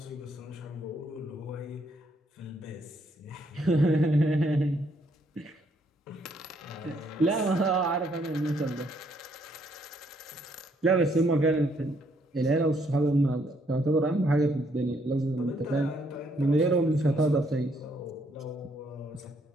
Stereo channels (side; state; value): both; normal; correlation 0.70